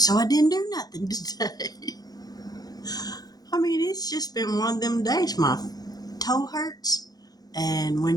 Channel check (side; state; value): right; late; 0.19 ms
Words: I didn't do nothing today. I mean, it's just been one of them days. My toe hurts, and